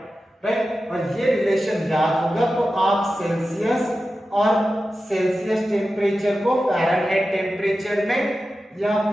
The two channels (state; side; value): normal; both; correlation 0.93